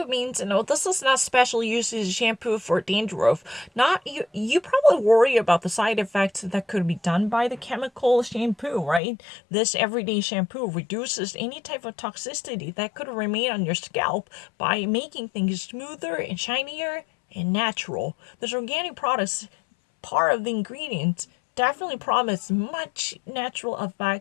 means, this is not special uses shampoo for dandruff. Not you probably worry about the side effects that could be done by the chemical shampoo, right? This everyday shampoo reduces any type of toxicity that could remain on your scalp by making things smoother and shinier and natural. This organic products, part of the ingredients, definitely promise much natural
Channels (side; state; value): right; drops out; at 9.0 s